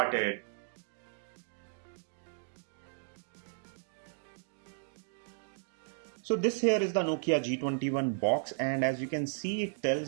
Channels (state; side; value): silent; left; digital silence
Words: So this here is the Nokia G21 box, and as you can see, it